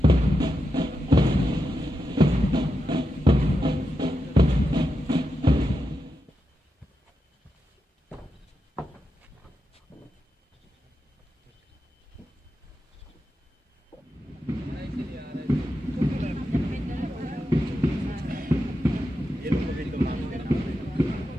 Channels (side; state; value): both; normal; correlation 0.87